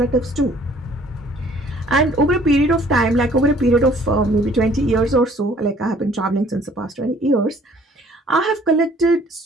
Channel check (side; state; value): both; normal; correlation 0.57